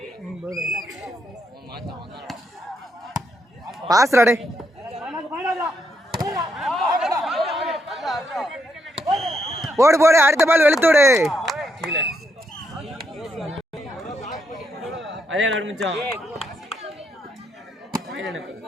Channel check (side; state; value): both; normal; correlation 0.78